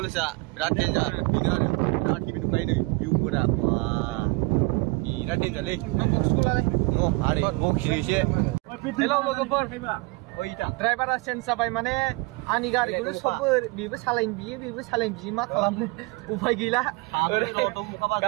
बिराद डेन्जार बेनो आरो बिराद गिदिर नुबाय नै भिउफोरा बिराद डेन्जारलै आरो बखियोसे हेलौ लोगोफोर ड्राइभारा चेन्ज जाबाय माने आंनि गारिखौनो सबबो बेबो सालायनो बियो मा खालामनो उफाय गैला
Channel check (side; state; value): left; quieter; 25.8 dB